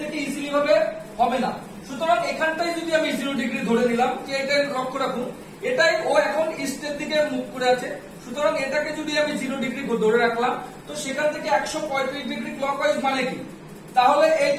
ইজিলি ভাবে হবে না। সুতরাং এখানটাই যদি আমি 0 ডিগ্রি ধরে নিলাম, যে এটা লক্ষ্য রাখুন, এটাই ও এখন ইস্টের দিকে মুখ করে আছে। সুতরাং এটাকে যদি আমি 0 ডিগ্রি ধরে রাখলাম, তো সেখান থেকে 135 ডিগ্রি ক্লকওয়াইজ মানে কি, তাহলে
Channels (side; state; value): both; identical; correlation 1.00